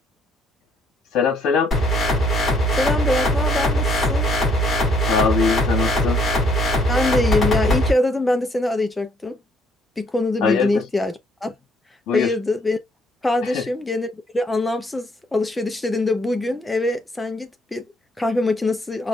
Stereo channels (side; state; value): both; normal; correlation 0.66